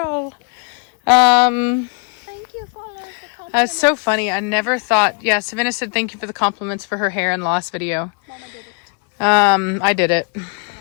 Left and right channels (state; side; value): quieter; right; 36.2 dB